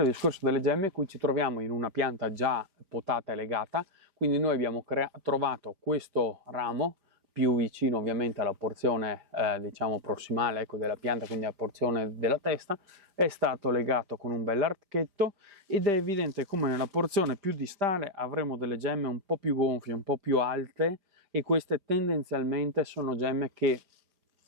il discorso delle gemme, qui ci troviamo in una pianta già potata e legata, quindi noi abbiamo trovato questo ramo più vicino ovviamente alla porzione diciamo prossimale, ecco, della pianta, quindi alla porzione della testa, è stato legato con un bel archetto ed è evidente come nella porzione più distale avremo delle gemme un po' più gonfie, un po' più alte, e queste tendenzialmente sono gemme che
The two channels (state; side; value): late; left; 5.0 ms